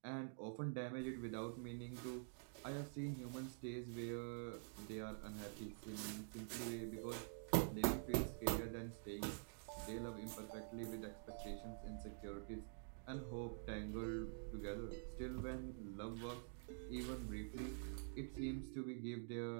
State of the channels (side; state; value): left; silent; digital silence